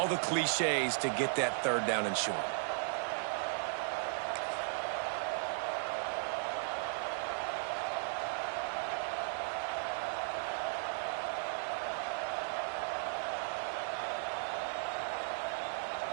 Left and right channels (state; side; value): silent; left; digital silence